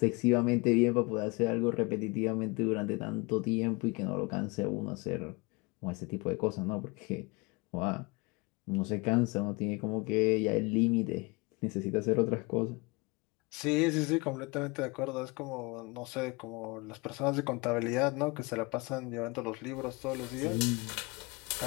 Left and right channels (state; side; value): quieter; right; 26.9 dB